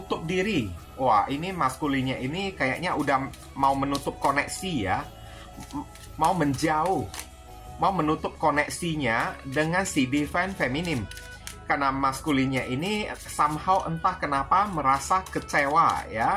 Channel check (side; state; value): both; identical; correlation 1.00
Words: diri. Wah, ini maskulinnya ini kayaknya udah mau menutup koneksi ya. Mau menjauh. Mau menutup koneksinya dengan si divine feminine. Karena maskulinnya ini somehow entah kenapa merasa kecewa